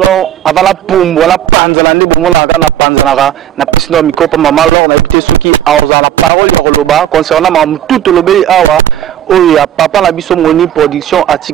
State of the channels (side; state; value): left; quieter; 10.9 dB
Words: lo avant la pumbo la panzala ndi bomola kana panzala na pisno mikopa mama lo na ibite ceux qui aoza la parole ya loba concernant mam tout lobeli awa oya papa la biso moni production